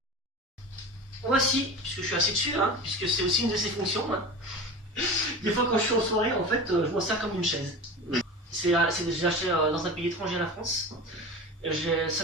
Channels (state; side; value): normal; both; correlation 0.31